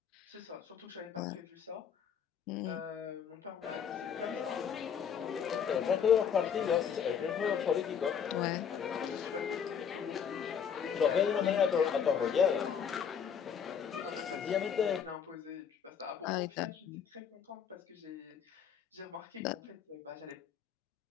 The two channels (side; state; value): right; quieter; 7.6 dB